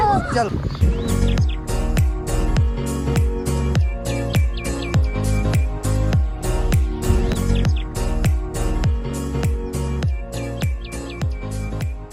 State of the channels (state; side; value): identical; both; correlation 1.00